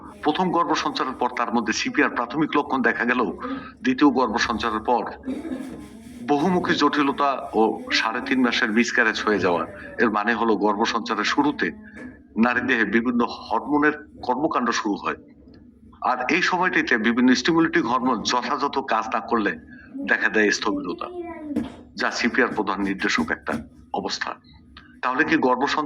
প্রথম গর্ভ সঞ্চারের পর তার মধ্যে সিপিআর প্রাথমিক লক্ষণ দেখা গেল, দ্বিতীয় গর্ভ সঞ্চারের পর বহুমুখী জটিলতা ও 3.5 মাসের মিসক্যারেজ হয়ে যাওয়া। এর মানে হলো গর্ভ সঞ্চারের শুরুতে নারী দেহে বিভিন্ন হরমোনের কর্মকাণ্ড শুরু হয়, আর এই সময়টিতে বিভিন্ন স্টিমুলেটিং হরমোন যথাযথ কাজ না করলে দেখা দেয় স্থবিরতা, যা সিপিআর প্রধান নির্দেশক একটা অবস্থা। তাহলে কি গর্ভ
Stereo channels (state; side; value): identical; both; correlation 1.00